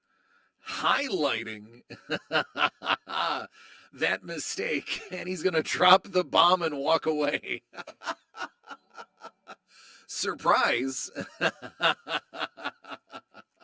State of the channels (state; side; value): identical; both; correlation 1.00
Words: that mistake, and he's going to drop the bomb and walk away. Surprise.